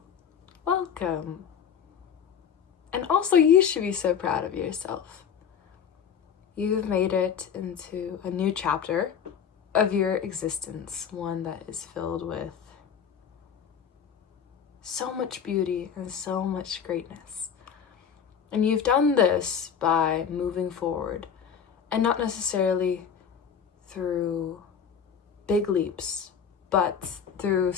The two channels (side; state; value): right; quieter; 7.5 dB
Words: Welcome. And also, you should be so proud of yourself. You've made it into a new chapter of your existence, one that is filled with so much beauty and so much greatness. And you've done this by moving forward, and not necessarily through big leaps, but through